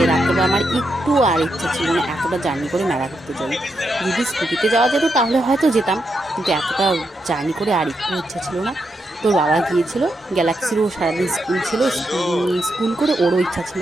রাত্রেবেলা আমার একটু আর ইচ্ছা ছিল না এতটা জার্নি করে মেলা ঘুরতে যাই। যদি স্কুটিতে যাওয়া যেত তাহলে হয়তো যেতাম, কিন্তু এতটা জার্নি করে আর একটু ইচ্ছা ছিল না। তোর বাবা গিয়েছিল, গ্যালাক্সিরও সারাদিন স্কুল ছিল, স্কুল করে ওরও ইচ্ছা ছিল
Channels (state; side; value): normal; both; correlation 0.83